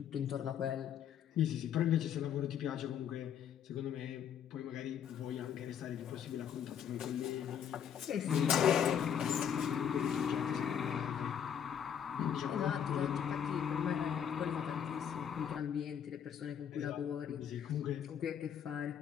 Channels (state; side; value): quieter; right; 8.6 dB